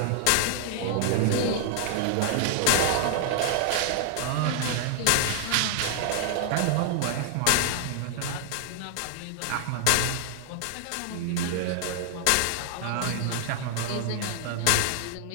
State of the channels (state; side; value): different; both; correlation 0.00